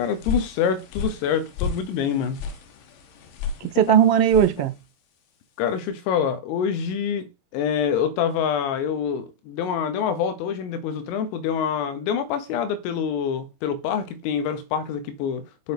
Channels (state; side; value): late; right; 22 ms